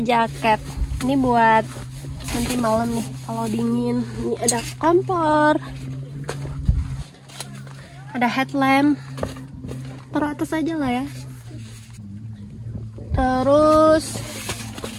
jaket. Ini buat nanti malam nih kalau dingin. Ini ada kompor, ada headlamp. Taruh atas aja lah ya. Terus,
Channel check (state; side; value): identical; both; correlation 1.00